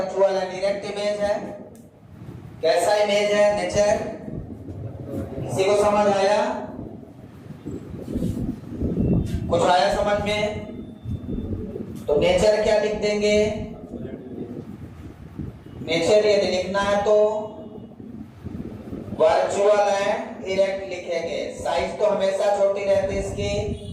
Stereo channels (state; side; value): identical; both; correlation 1.00